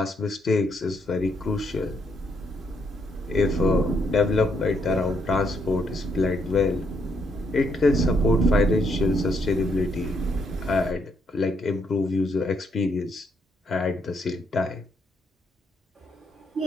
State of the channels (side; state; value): both; normal; correlation 0.74